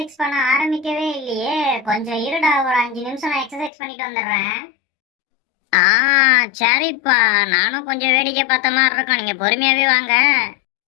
பண்ண ஆரம்பிக்கவே இல்லையே. கொஞ்சம் இருடா, ஒரு 5 நிமிஷம் நான் எக்ஸசைஸ் பண்ணிட்டு வந்துடுறேன். ஆ, சரிப்பா. நானும் கொஞ்சம் வேடிக்கை பார்த்த மாதிரி இருக்கும். நீங்க பொறுமையாவே வாங்க.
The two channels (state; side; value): drops out; right; at 3.7 s